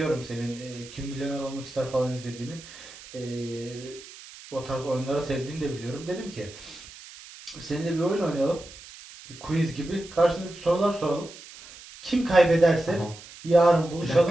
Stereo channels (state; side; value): noise; right; hiss, 17 dB below the sound